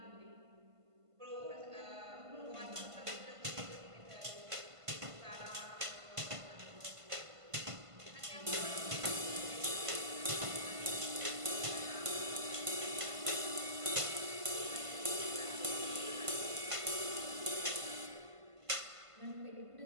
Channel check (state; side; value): late; left; 1.5 ms